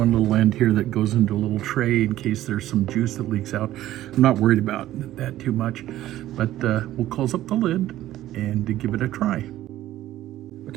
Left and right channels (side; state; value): left; quieter; 14.1 dB